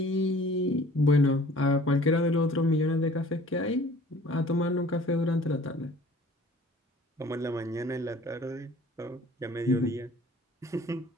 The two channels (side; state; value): both; normal; correlation 0.50